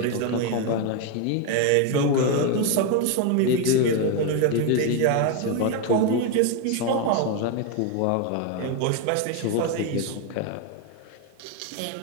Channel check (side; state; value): both; different; correlation 0.02